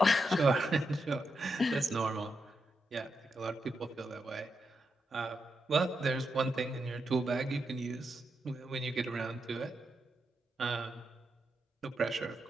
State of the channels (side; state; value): both; normal; correlation 0.85